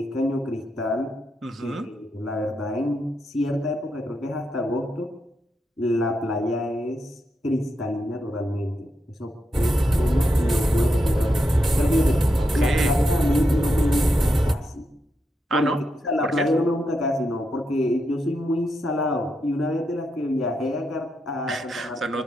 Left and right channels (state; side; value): normal; both; correlation 0.84